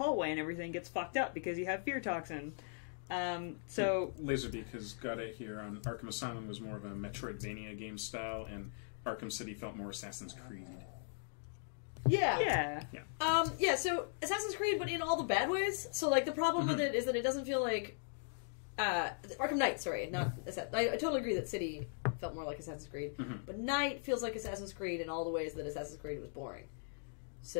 and everything gets fucked up because you have fear toxin. So Laserbeak has got it here on Arkham Asylum was more of a Metroidvania game style, and Arkham City felt more Assassin's Creed. Yeah. yeah, So Assassin's Creed, but in all the bad ways. So, like, the problem with it is that it doesn't feel like... Arkham Knight, sorry. Not I totally agree that City felt more like Assassin's Creed. But Knight feels like Assassin's Creed in all the ways that Assassin's Creed was boring.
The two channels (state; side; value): silent; right; digital silence